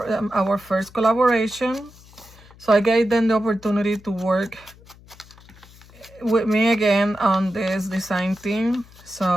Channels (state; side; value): noise; left; hum, 24 dB below the sound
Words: first collaboration. So I gave them the opportunity to work with me again on this design team.